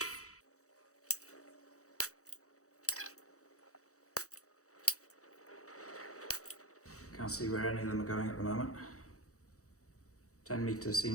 Can't see where any of them are going at the moment. 10 metres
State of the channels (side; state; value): right; late; 0.65 ms